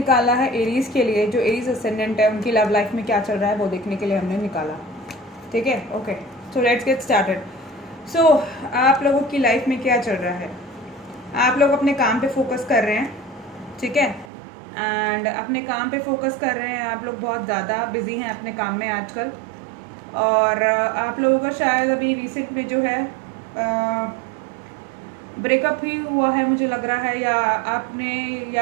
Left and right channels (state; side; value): drops out; left; at 14.3 s